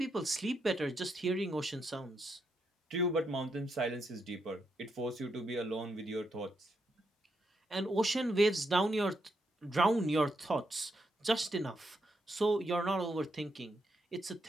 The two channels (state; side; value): normal; both; correlation 0.81